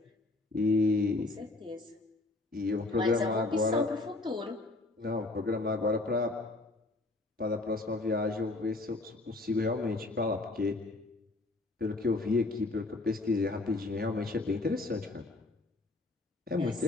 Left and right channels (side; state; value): right; quieter; 3.1 dB